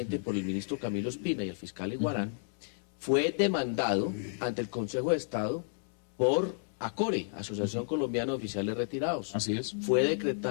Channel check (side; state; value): right; silent; 56 dB below the other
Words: por el ministro Camilo Espina y el fiscal Iguarán, fue demandado ante el Consejo de Estado por ACORE, Asociación Colombiana de Oficiales Retirados. Así es. Fue